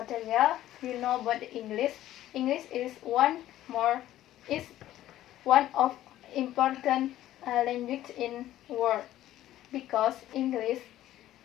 you know about English. English is one of important language in world, because English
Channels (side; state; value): right; quieter; 13.6 dB